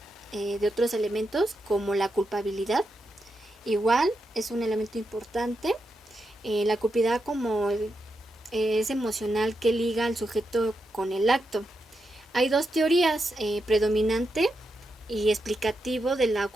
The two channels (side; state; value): both; normal; correlation 0.85